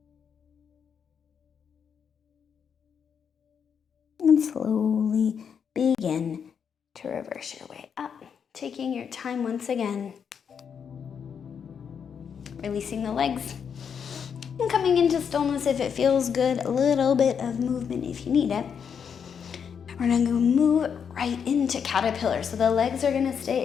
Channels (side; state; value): right; quieter; 7.2 dB